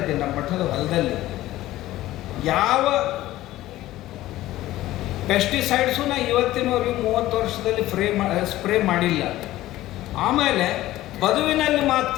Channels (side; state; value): right; quieter; 15.7 dB